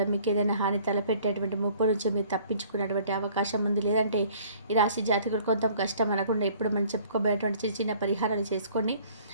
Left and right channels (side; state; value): both; inverted; correlation -0.55